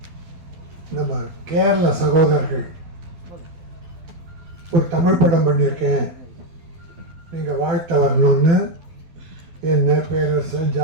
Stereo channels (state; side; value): late; left; 12 ms